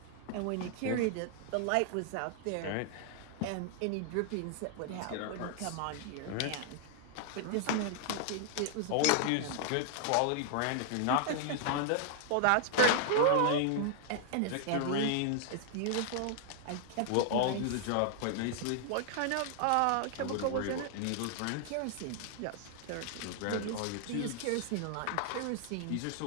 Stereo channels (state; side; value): different; both; correlation 0.00